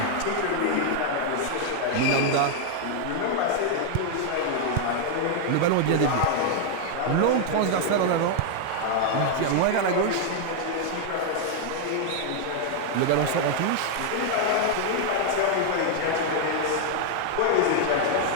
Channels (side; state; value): both; different; correlation 0.00